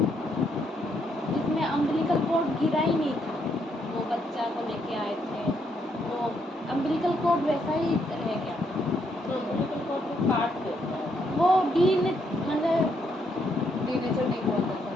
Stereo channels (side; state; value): both; normal; correlation 0.75